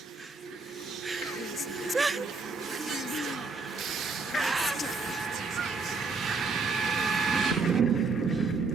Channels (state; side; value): quieter; left; 4.1 dB